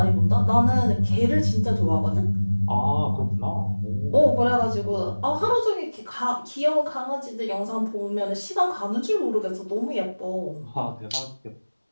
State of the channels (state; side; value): inverted; both; correlation -1.00